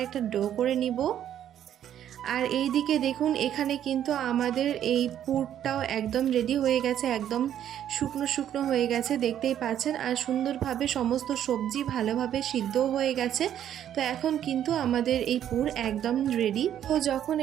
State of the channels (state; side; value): quieter; left; 10.5 dB